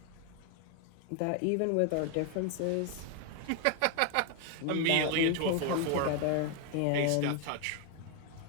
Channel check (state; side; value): different; both; correlation 0.01